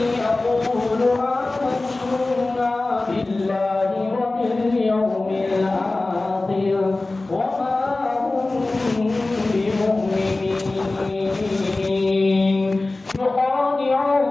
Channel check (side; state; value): right; quieter; 3.1 dB